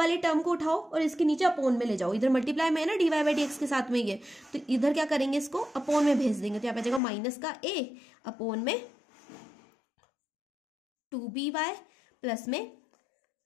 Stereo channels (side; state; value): right; drops out; at 7.0 s